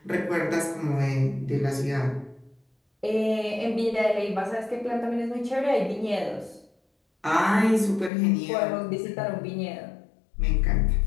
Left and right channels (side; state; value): right; drops out; at 8.1 s